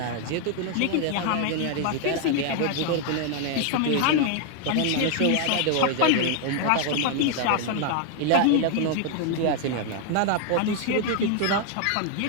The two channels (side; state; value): both; different; correlation 0.00